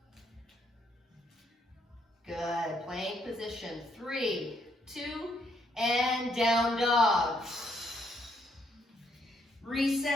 Good. Plank position. 3, 2, and down dog.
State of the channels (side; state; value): both; normal; correlation 0.73